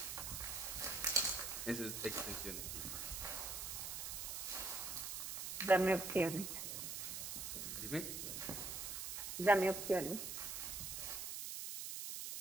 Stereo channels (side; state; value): right; noise; hiss, 4 dB below the sound